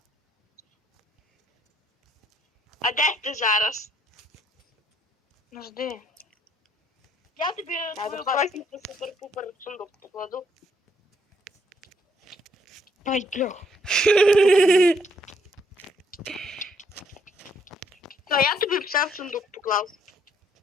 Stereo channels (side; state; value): both; normal; correlation 0.69